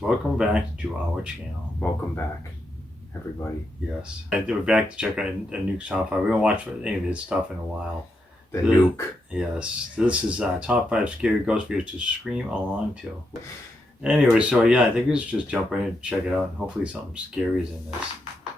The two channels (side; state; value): both; normal; correlation 0.83